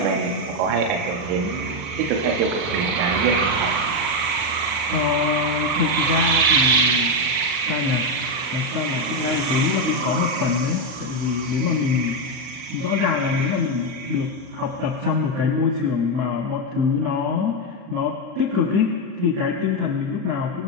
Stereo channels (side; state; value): left; late; 40 ms